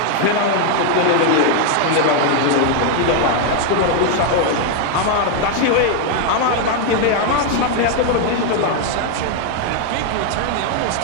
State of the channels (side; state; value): both; different; correlation 0.01